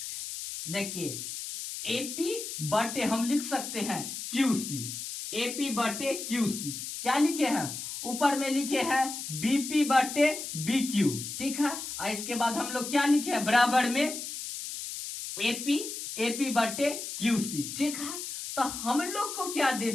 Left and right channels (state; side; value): noise; left; hiss, 7 dB below the sound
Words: देखिए एपी बटे हम लिख सकते हैं क्यूसी। एपी बटे क्यूसी क्या लिखे हैं, ऊपर में लिखे हैं बीपी बटे बी क्यू। ठीक है, और इसके बाद हम लोग क्या लिखे हैं, बराबर में एपी बटे क्यूसी। ठीक है, तो हम लोग को क्या दे